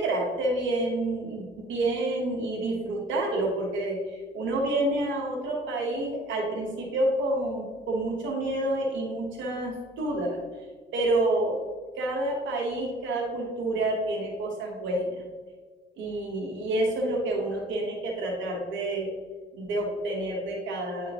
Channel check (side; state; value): both; normal; correlation 0.50